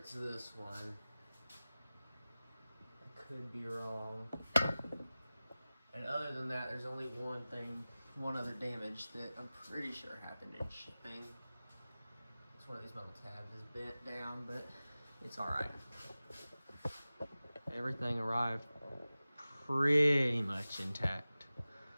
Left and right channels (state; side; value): inverted; both; correlation -0.97